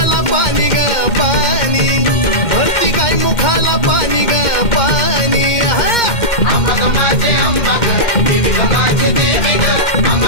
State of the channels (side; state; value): right; late; 2.1 ms